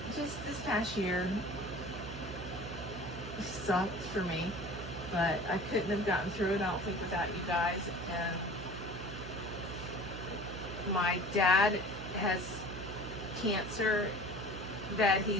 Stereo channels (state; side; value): noise; right; hum, 9 dB below the sound